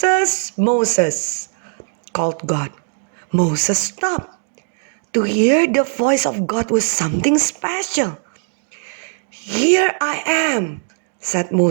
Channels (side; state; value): left; silent; 61 dB below the other